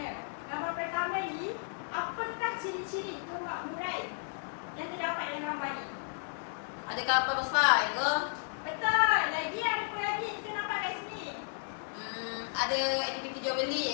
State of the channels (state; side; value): silent; right; digital silence